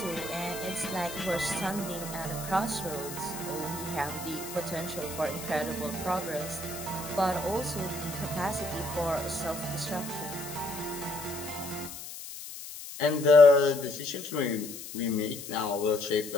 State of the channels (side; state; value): left; noise; hiss, 11 dB below the sound